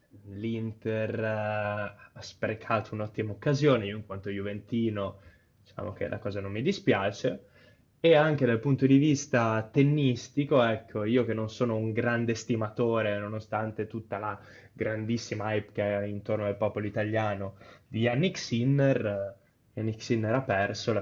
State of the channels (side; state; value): both; identical; correlation 1.00